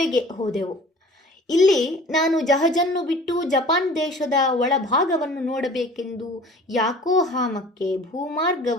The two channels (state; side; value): normal; both; correlation 0.46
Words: ಹೋದೆವು. ಇಲ್ಲಿ ನಾನು ಜಹಜನ್ನು ಬಿಟ್ಟು ಜಪಾನ್ ದೇಶದ ಒಳಭಾಗವನ್ನು ನೋಡಬೇಕೆಂದು ಯಾಕೋಹಾಮಕ್ಕೆ